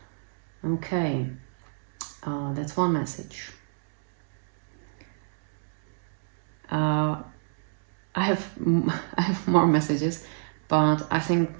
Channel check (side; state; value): left; silent; digital silence